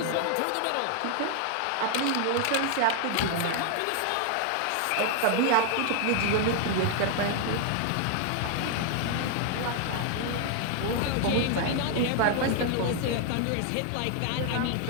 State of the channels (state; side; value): different; both; correlation 0.00